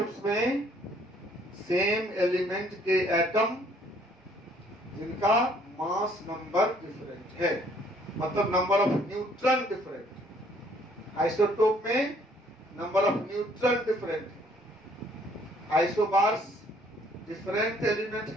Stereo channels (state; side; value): normal; both; correlation 0.62